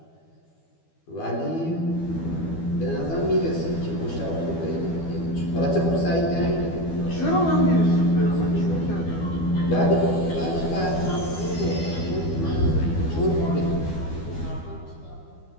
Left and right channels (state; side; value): late; right; 12 ms